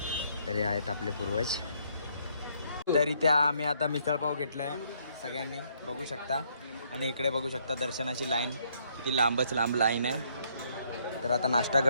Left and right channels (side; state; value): both; inverted; correlation -0.69